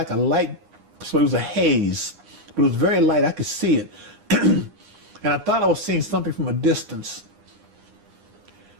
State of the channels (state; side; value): late; left; 9.8 ms